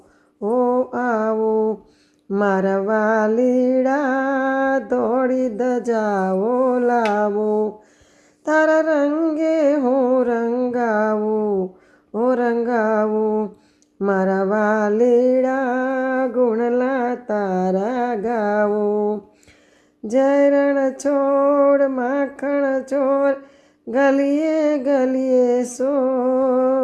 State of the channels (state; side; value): identical; both; correlation 1.00